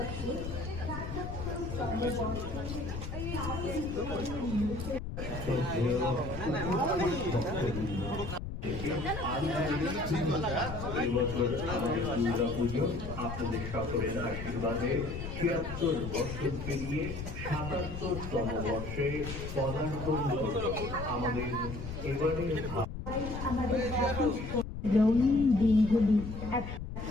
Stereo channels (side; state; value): left; noise; rumble, 7 dB below the sound